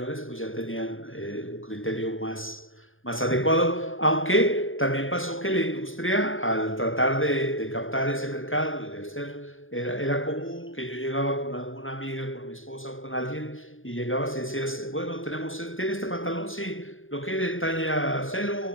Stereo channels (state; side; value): late; right; 0.59 ms